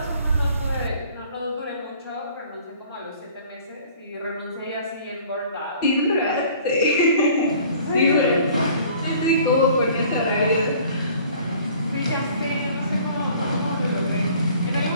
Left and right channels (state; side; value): inverted; both; correlation -0.52